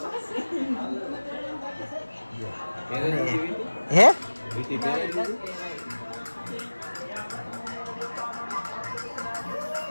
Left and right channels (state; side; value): inverted; both; correlation -1.00